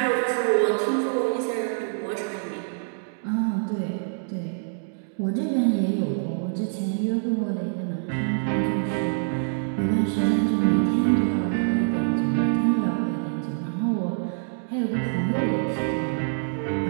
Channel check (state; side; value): silent; left; digital silence